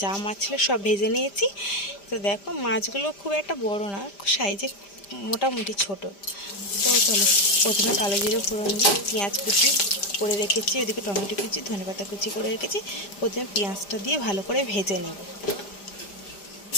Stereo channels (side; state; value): right; late; 5.0 ms